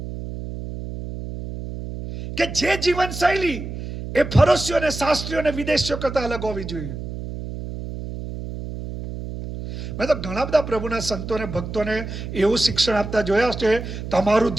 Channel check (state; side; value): noise; right; hum, 8 dB below the sound